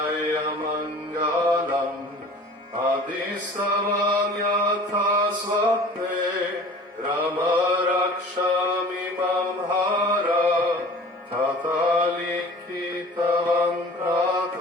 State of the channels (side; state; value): both; normal; correlation 0.44